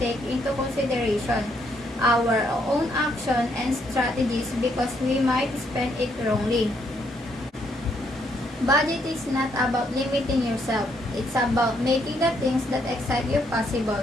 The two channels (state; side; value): normal; both; correlation 0.72